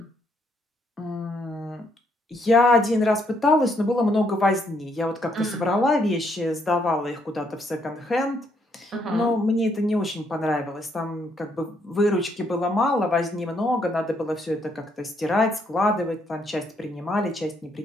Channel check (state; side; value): normal; both; correlation 0.72